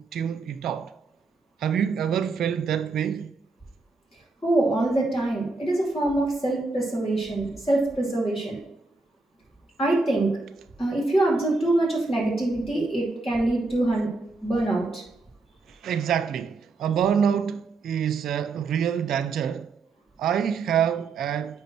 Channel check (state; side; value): quieter; left; 3.6 dB